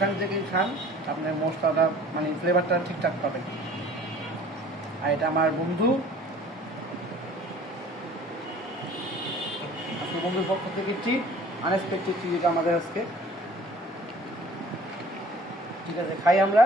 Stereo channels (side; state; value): both; normal; correlation 0.50